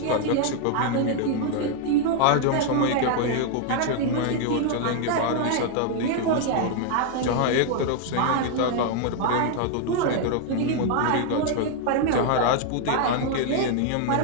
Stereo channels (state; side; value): different; both; correlation 0.00